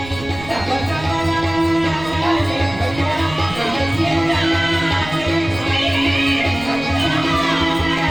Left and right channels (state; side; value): noise; right; rumble, 15 dB below the sound